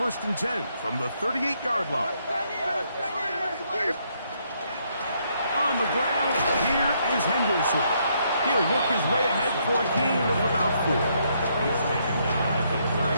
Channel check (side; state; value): both; inverted; correlation -0.73